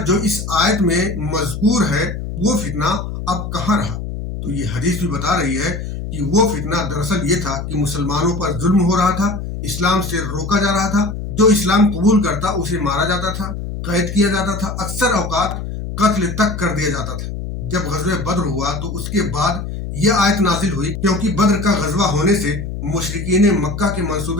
جو اس آیت میں مذکور ہے وہ فتنہ اب کہاں رہا. تو یہ حدیث بھی بتا رہی ہے کہ وہ فتنہ دراصل یہ تھا کہ مسلمانوں پر ظلم ہو رہا تھا، اسلام سے روکا جا رہا تھا، جو اسلام قبول کرتا اسے مارا جاتا تھا، قید کیا جاتا تھا، اکثر اوقات قتل تک کر دیا جاتا تھا. جب غزوہ بدر ہوا تو اس کے بعد یہ آیت نازل ہوئی کیونکہ بدر کا غزوہ ہونے سے مشرکین مکہ کے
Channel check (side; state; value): left; noise; hum, 6 dB below the sound